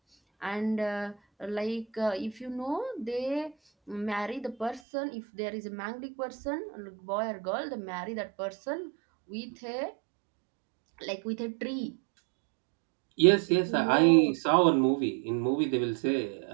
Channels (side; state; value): left; drops out; at 4.8 s